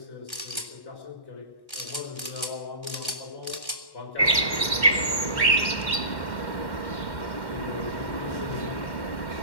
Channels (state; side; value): late; right; 1.1 ms